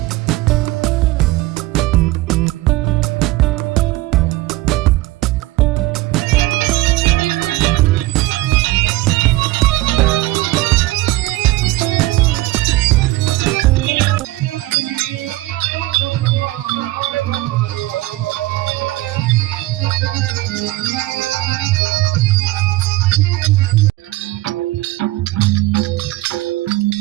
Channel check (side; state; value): left; quieter; 18.3 dB